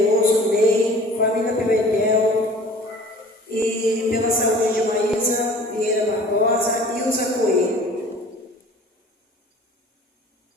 Ney, família Pimentel, e pela saúde de Maísa Vieira Barbosa e Ilza Coelho.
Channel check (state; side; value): normal; both; correlation 0.46